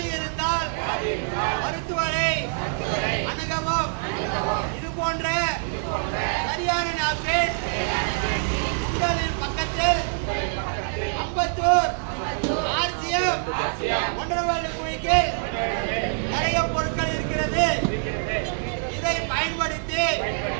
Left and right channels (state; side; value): silent; left; digital silence